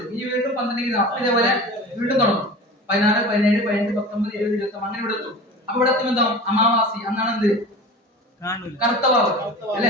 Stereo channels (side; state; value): both; normal; correlation 0.36